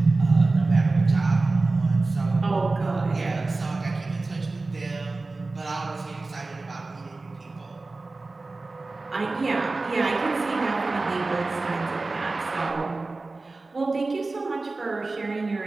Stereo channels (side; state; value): left; quieter; 3.4 dB